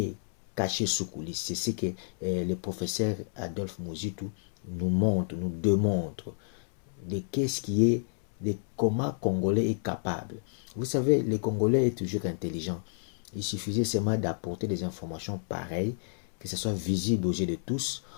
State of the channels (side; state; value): right; silent; 58 dB below the other